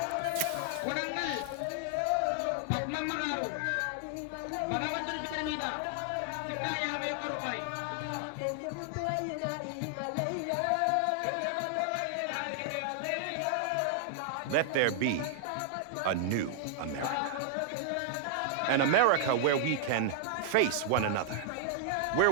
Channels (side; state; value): both; different; correlation -0.01